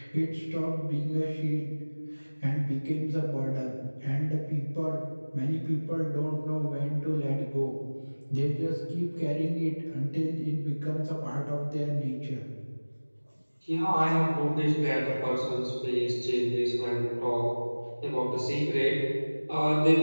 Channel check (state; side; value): inverted; both; correlation -1.00